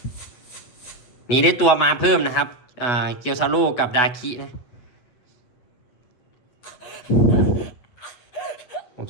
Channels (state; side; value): late; right; 8.2 ms